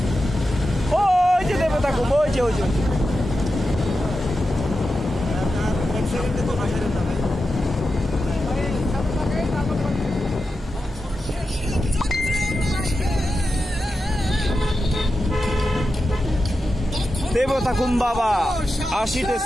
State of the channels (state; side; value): normal; both; correlation 0.90